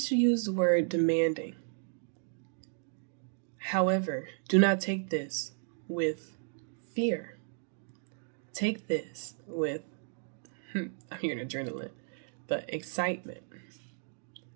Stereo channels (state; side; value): silent; left; 55 dB below the other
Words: to use the word demanding. However, do not take this with fear. Take this with, I'm hearing adrenaline, but excitement.